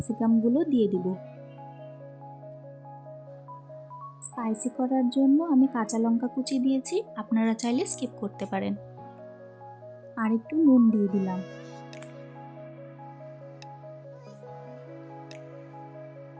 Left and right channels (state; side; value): identical; both; correlation 1.00